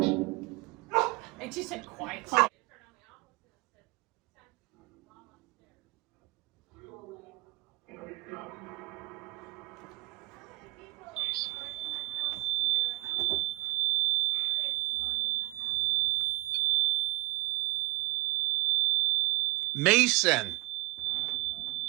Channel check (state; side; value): quieter; left; 21.9 dB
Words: And she said quiet. Mason.